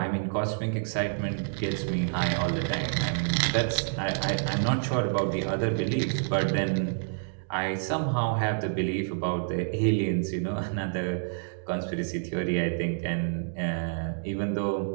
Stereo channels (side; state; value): left; silent; digital silence